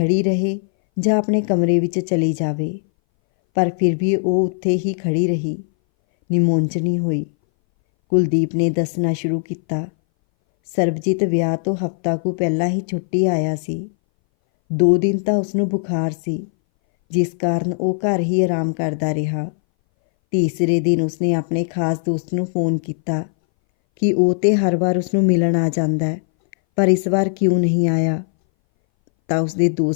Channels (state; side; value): silent; right; 61 dB below the other